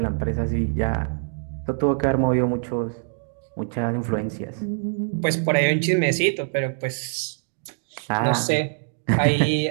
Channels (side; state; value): left; silent; digital silence